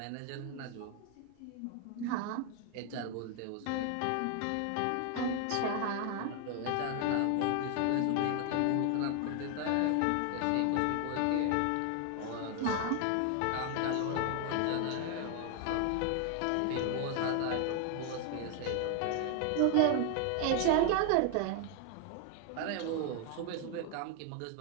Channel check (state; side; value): different; both; correlation 0.01